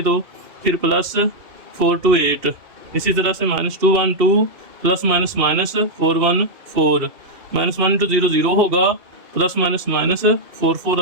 तो फिर प्लस 4 2 8। इसी तरह से -2 1 2 प्लस माइनस -4 1 4, -1 इंटू 0 0 होगा, प्लस माइनस -4 4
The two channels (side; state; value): left; late; 2.7 ms